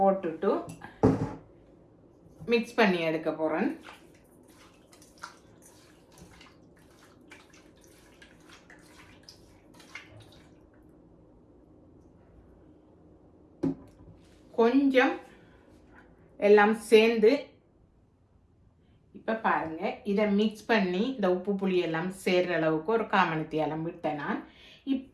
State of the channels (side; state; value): both; identical; correlation 1.00